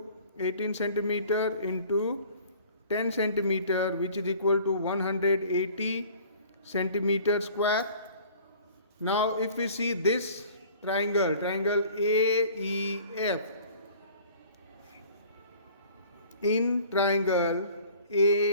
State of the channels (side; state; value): both; inverted; correlation -0.49